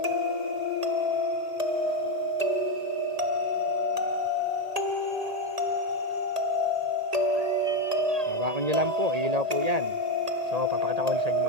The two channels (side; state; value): left; late; 1.8 ms